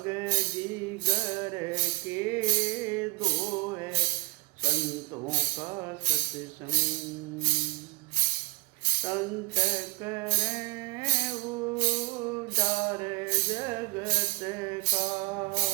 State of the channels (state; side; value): quieter; left; 26.6 dB